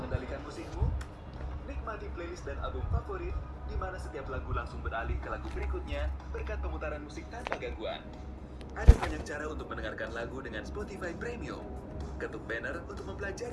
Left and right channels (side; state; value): both; identical; correlation 1.00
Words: Nikmati playlist dan album favorit di mana setiap lagu langsung beralih ke lagu berikutnya berkat pemutaran musik tanpa gangguan. Ada banyak cara untuk mendengarkan lagu dengan Spotify Premium. Ketuk banner untuk